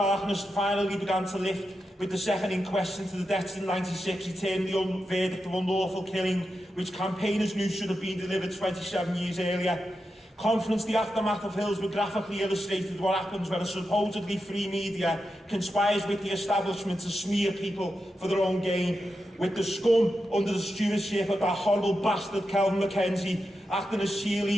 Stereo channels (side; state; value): both; normal; correlation 0.88